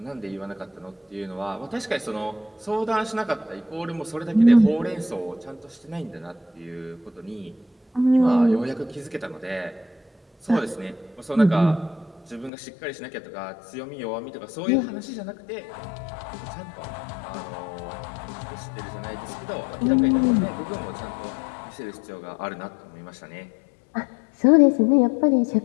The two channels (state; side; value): drops out; right; at 12.5 s